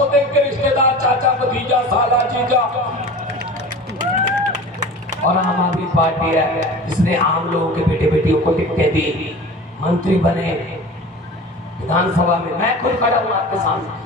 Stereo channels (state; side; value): normal; both; correlation 0.36